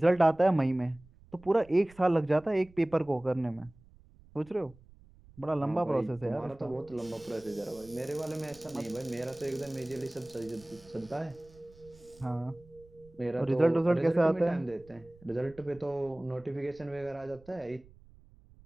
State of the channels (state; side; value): noise; right; rumble, 25 dB below the sound